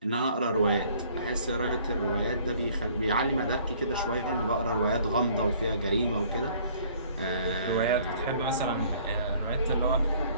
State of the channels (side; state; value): both; inverted; correlation -0.57